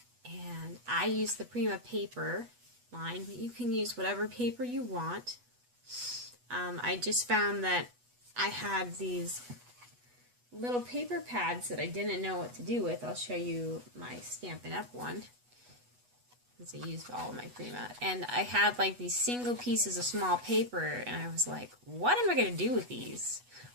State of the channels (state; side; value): late; left; 8.2 ms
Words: And I use the Prima paper line, but you can use whatever paper you want. I just found that I had these little paper pads that I didn't know what to do with. I'll show you my Stampin' Up! One. I used all of my Prima, and I had like these single pieces of small paper, and I was like, what am I going to do with these?